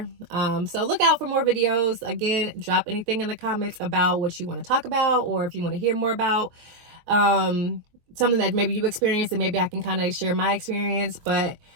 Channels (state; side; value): late; left; 23 ms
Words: So look out for more videos. Again, drop anything in the comments about what you want to talk about, or if you want to hear more about something that maybe you experienced, and maybe I can kind of share my experience. But